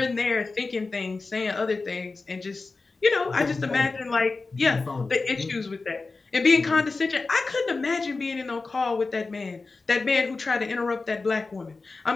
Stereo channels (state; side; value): quieter; right; 3.9 dB